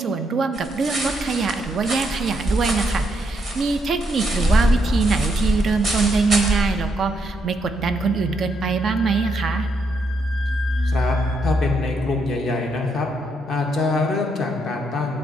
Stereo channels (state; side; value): normal; both; correlation 0.77